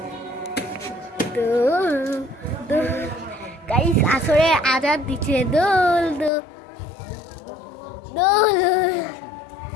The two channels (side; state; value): right; drops out; at 6.3 s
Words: গাইস, আসরে আজাদ দিচ্ছে দোল দোল দোল।